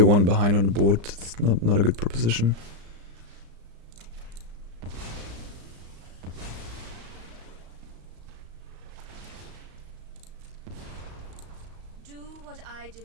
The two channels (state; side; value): late; left; 35 ms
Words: one behind on the board. It's not a good proposition. Do what I